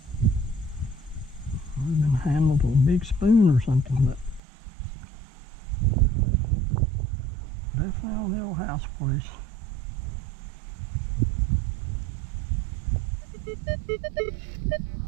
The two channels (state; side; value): drops out; left; at 4.4 s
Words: Would have been handled with a big spoon or something, but definitely on the old house place.